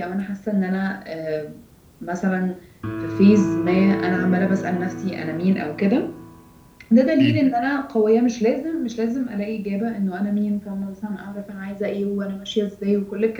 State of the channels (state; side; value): identical; both; correlation 1.00